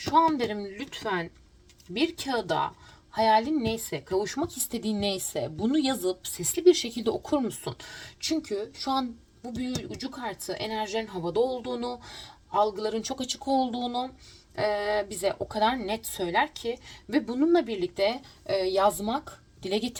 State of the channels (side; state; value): both; identical; correlation 1.00